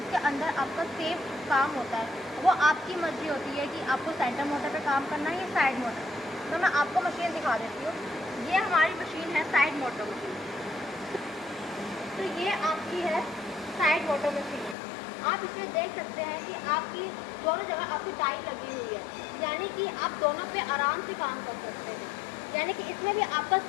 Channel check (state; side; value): drops out; right; at 14.8 s